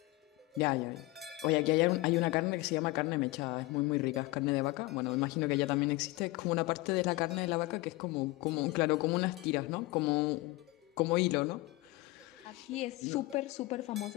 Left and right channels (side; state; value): right; quieter; 20.5 dB